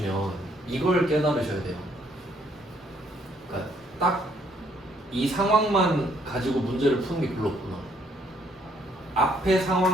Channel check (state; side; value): normal; both; correlation 0.68